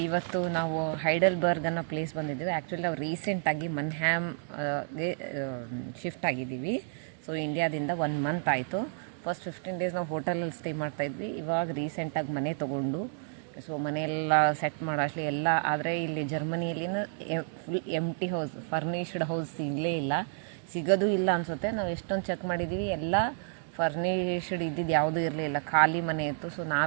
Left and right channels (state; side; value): silent; left; digital silence